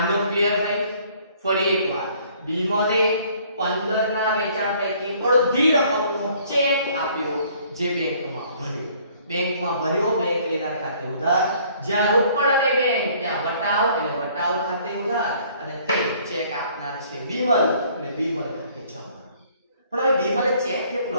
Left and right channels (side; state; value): both; inverted; correlation -0.59